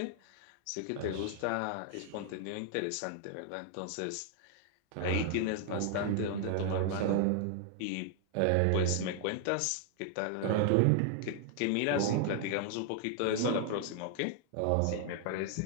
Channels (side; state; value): both; different; correlation 0.00